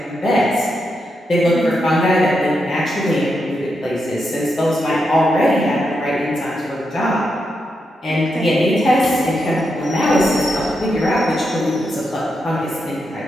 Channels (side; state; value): both; normal; correlation 0.84